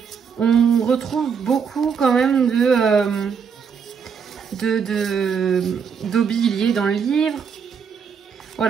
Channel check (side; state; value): left; quieter; 6.5 dB